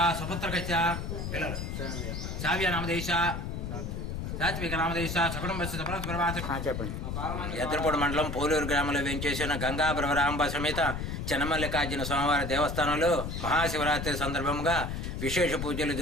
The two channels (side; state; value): left; noise; rumble, 4 dB below the sound